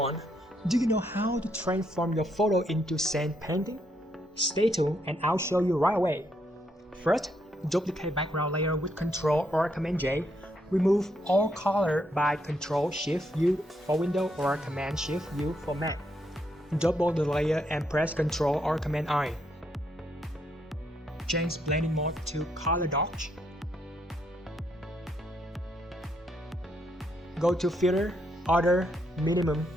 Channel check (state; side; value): normal; both; correlation 0.76